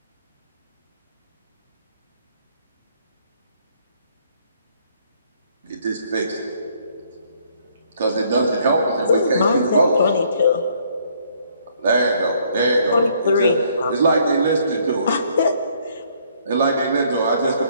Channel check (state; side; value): inverted; both; correlation -0.65